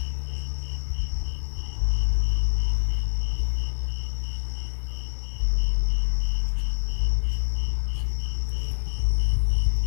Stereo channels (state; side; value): silent; right; 61 dB below the other